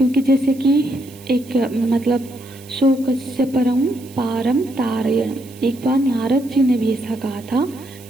जैसे कि एक मतलब शोकस्य परम पारम तारयण, एक बार नारद जी ने भी ऐसा कहा था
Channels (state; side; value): noise; right; hiss, 22 dB below the sound